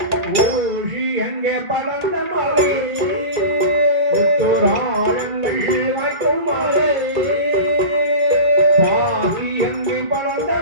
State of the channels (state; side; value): late; left; 2.3 ms